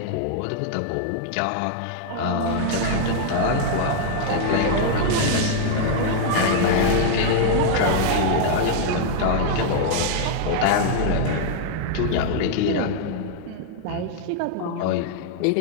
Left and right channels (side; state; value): both; different; correlation -0.01